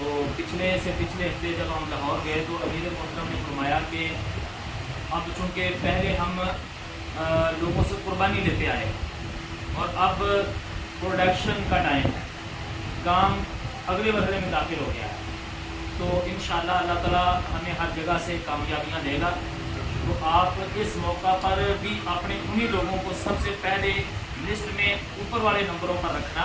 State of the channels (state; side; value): identical; both; correlation 1.00